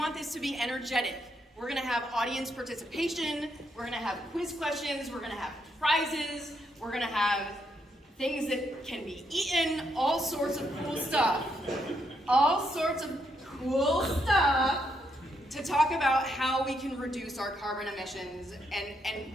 this to be energetic. We're going to have audience participation. We're going to have quiz questions. We're going to have prizes. We're going to have things that can be eaten, all sorts of cool stuff. All sorts of cool stuff to talk about how we can reduce our carbon emissions and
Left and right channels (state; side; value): normal; both; correlation 0.77